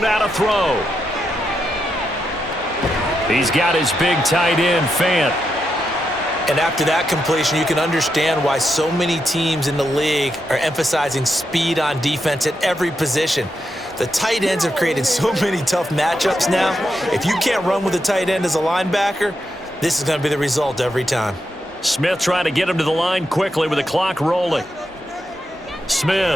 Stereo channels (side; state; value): both; normal; correlation 0.84